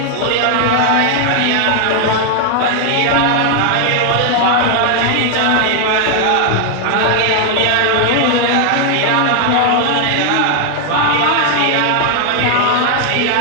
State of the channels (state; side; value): different; both; correlation 0.00